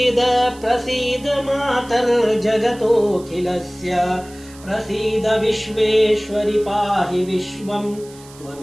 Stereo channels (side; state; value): right; noise; hiss, 22 dB below the sound